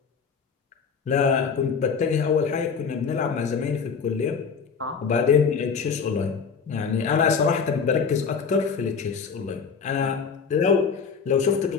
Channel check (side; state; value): right; quieter; 5.9 dB